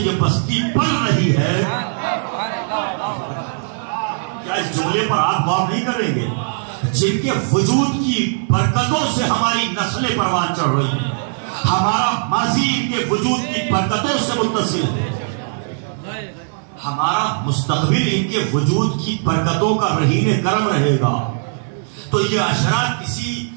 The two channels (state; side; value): silent; left; digital silence